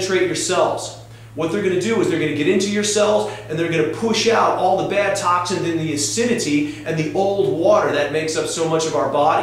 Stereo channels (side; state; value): both; identical; correlation 1.00